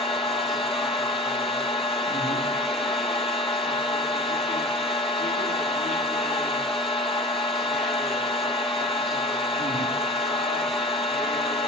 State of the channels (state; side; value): normal; both; correlation 0.37